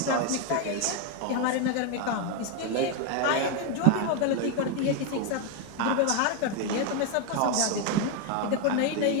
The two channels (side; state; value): both; different; correlation 0.01